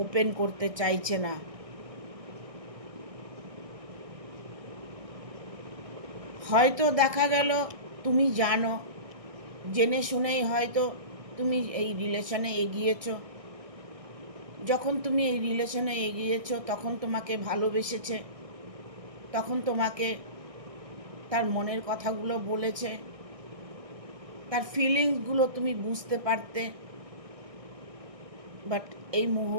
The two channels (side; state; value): left; late; 1.6 ms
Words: ওপেন করতে চাইছে না। হয়তো দেখা গেল তুমি জানো, জেনে শুনেই হয়তো তুমি এই রিলেশনে এগিয়েছো। যখন তুমি এই রিলেশনে এগিয়েছো, তখন তোমাকে ভালোবেসেছে, তখন তোমাকে তার মনের কথাগুলো বলেছে, তার ফিলিংসগুলো তুমি বুঝতে পারতে। বাট এই